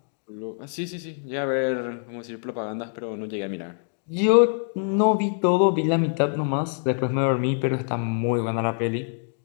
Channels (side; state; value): right; silent; 62 dB below the other